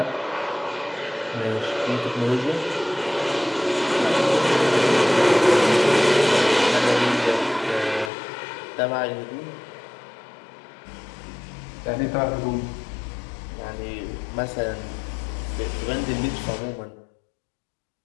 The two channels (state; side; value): drops out; right; at 8.1 s